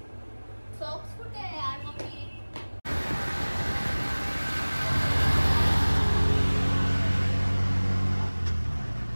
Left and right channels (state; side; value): inverted; both; correlation -1.00